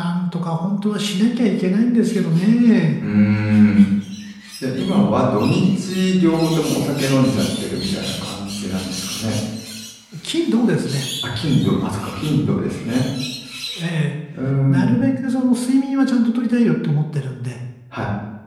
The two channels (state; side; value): identical; both; correlation 1.00